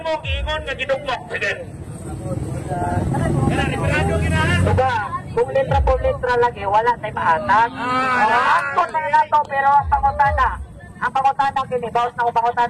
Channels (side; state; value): both; identical; correlation 1.00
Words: giingon nga gidugmok. Sige. Diba, kung litra po litra lagi, wala tayo maatag. Angkot na nato, pero ang pangutana kini, bawas na kung